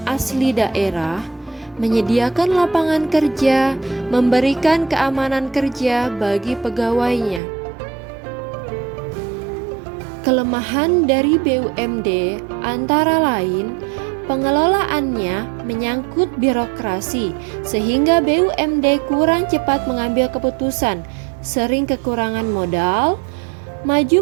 asli daerah, menyediakan lapangan kerja, memberikan keamanan kerja bagi pegawainya. Kelemahan dari BUMD antara lain pengelolaannya menyangkut birokrasi, sehingga BUMD kurang cepat mengambil keputusan, sering kekurangan modal.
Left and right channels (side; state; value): left; drops out; at 7.4 s